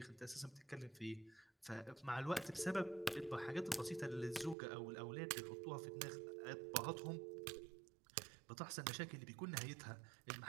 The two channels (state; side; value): drops out; left; at 4.5 s